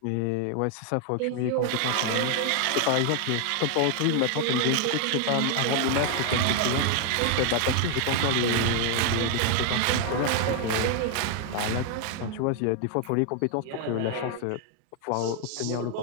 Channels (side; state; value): both; different; correlation 0.00